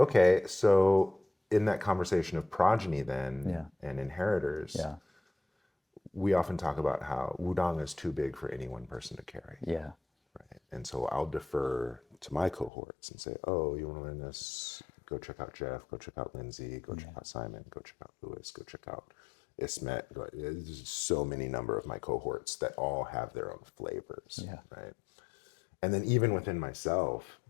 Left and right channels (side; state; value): right; drops out; at 12.7 s